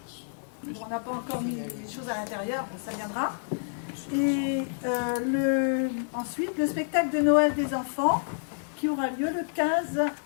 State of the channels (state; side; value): silent; right; digital silence